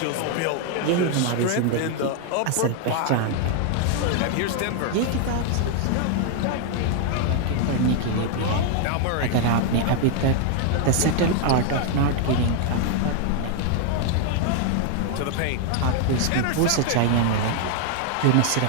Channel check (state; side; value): different; both; correlation 0.00